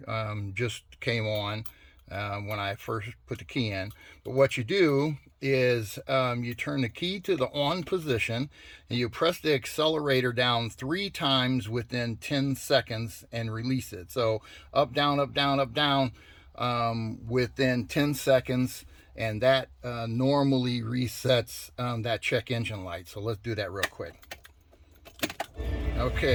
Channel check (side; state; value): both; identical; correlation 1.00